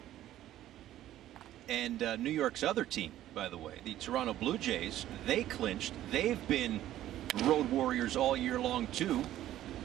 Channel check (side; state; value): left; quieter; 13.2 dB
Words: And New York's other team, by the way, the Toronto Blue Jays, they clinched. They've been road warriors all year long, too.